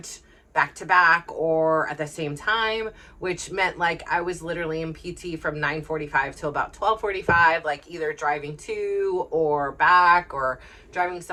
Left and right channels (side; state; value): both; identical; correlation 1.00